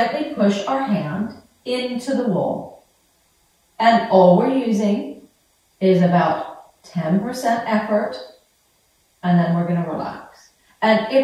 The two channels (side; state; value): both; identical; correlation 1.00